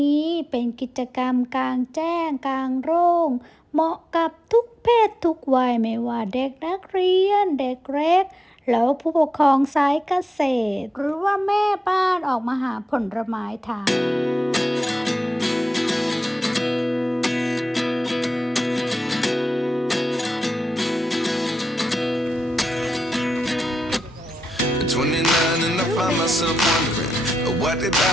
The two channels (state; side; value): normal; both; correlation 0.90